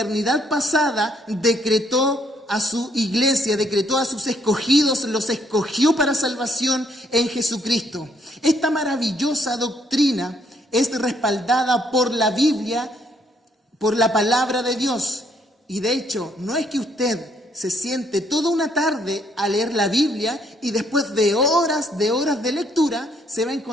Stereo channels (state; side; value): normal; both; correlation 0.68